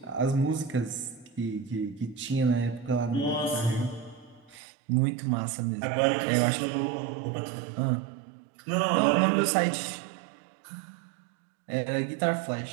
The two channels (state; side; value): drops out; left; at 4.5 s